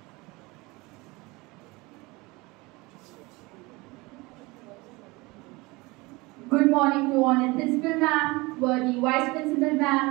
Good morning to Honored Principal Ma'am, worthy Vice Principal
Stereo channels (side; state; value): left; quieter; 23.6 dB